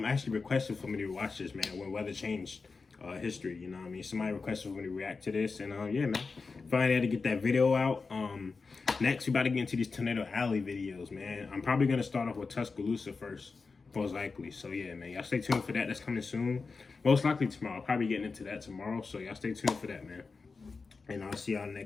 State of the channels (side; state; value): right; quieter; 4.4 dB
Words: requested for me to watch this, man, when weather changed history, you know what I mean? Somebody requested for me to react to this, and yeah, man. Finally had to get that video out. Next we about to get into these Tornado Alley videos, man. I'm probably gonna start off with Tuscaloosa first, most likely. So yeah, man, y'all stay tuned for that. That's coming soon. Most likely tomorrow. I'll probably getting into that tomorrow. So y'all stay tuned for that, man. And I'll see y'all